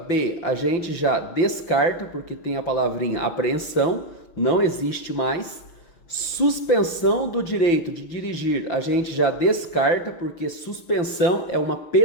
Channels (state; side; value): late; right; 5.9 ms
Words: a gente já descarta porque tem a palavrinha apreensão, não existe mais. Suspensão do direito de dirigir a gente já descarta porque suspensão é uma